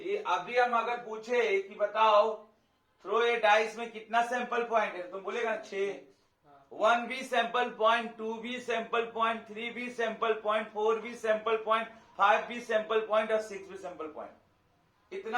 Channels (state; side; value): identical; both; correlation 1.00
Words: अभी हम अगर पूछे कि बताओ थ्रो ए डाइस में कितना सैंपल पॉइंट है, तुम बोलेगा 6, 1 भी सैंपल पॉइंट, 2 भी सैंपल पॉइंट, 3 भी सैंपल पॉइंट, 4 भी सैंपल पॉइंट, 5 भी सैंपल पॉइंट और 6 भी सैंपल पॉइंट।